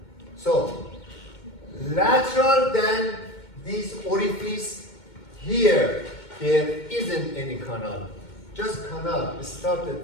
So, lateral than this orifice here, there isn't any canal. Just canal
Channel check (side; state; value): right; late; 2.2 ms